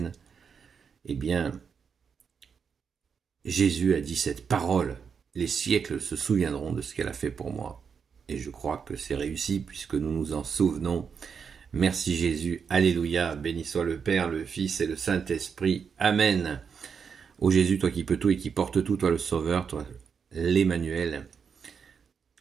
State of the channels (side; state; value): left; quieter; 6.4 dB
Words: Eh bien, Jésus a dit cette parole, les siècles se souviendront de ce qu'elle a fait pour moi. Et je crois que c'est réussi puisque nous nous en souvenons. Merci Jésus, alléluia, béni soit le Père, le Fils et le Saint-Esprit. Amen. Ô Jésus, toi qui peux tout et qui portes tout, toi le Sauveur, toi l'Emmanuel.